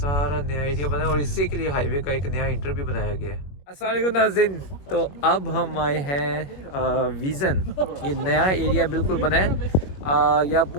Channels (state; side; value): late; right; 21 ms